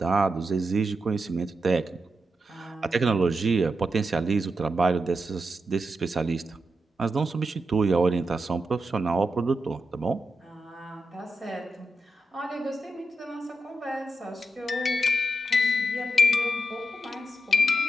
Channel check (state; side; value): normal; both; correlation 0.86